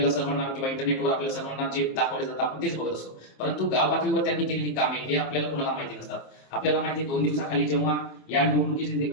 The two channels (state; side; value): late; right; 26 ms